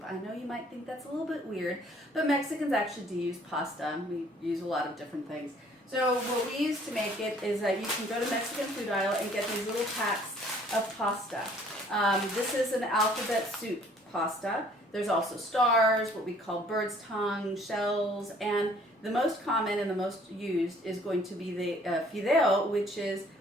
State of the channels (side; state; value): both; normal; correlation 0.58